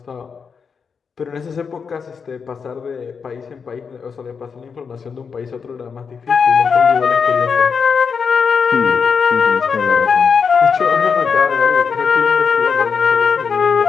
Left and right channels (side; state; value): right; quieter; 5.9 dB